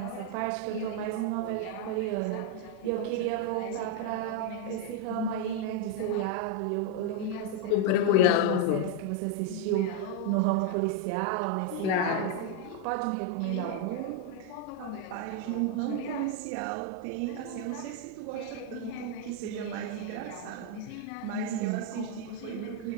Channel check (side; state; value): both; different; correlation 0.01